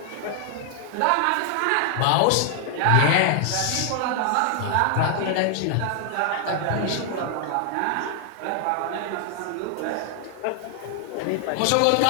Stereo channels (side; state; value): both; different; correlation 0.00